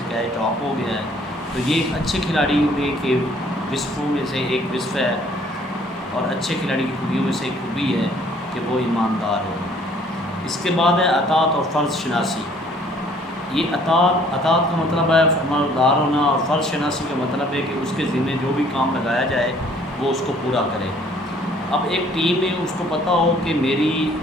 کیچ ڈراپ ہو گیا ہے۔ تو یہ ایک اچھے کھلاڑی میں کے وصفوں میں سے ایک وصف ہے، اور اچھے کھلاڑی کی خوبیوں میں سے ایک خوبی ہے کہ وہ ایماندار ہو۔ اس کے بعد ہے اطاعت اور فرض شناسی۔ یہ اطاعت کا مطلب ہے فرمانبردار ہونا، اور فرض شناسی کا مطلب ہے کہ اس کے ذمہ جو بھی کام لگایا جائے وہ اس کو پورا کرے۔ اب ایک ٹیم میں اس کو پتہ ہو کہ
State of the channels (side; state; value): both; normal; correlation 0.59